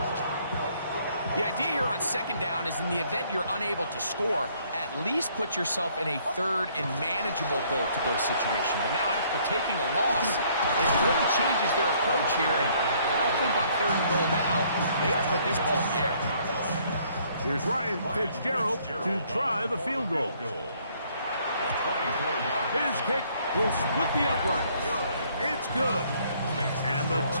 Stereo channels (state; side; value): inverted; both; correlation -0.64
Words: The idea here on second down is in the event you're unable to score, at least put yourself in a third and manageable goal-to-go situation. But now after taking a loss, it really changes their approach here. And I think on third and goal now, they got to put this ball in the air. Here's Ryan Fitzgerald to try the field goal. His kick will split the uprights. It's good. And the